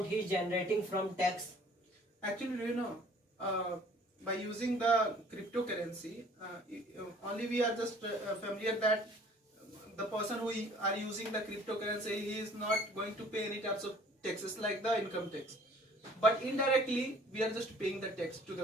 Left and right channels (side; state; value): both; normal; correlation 0.53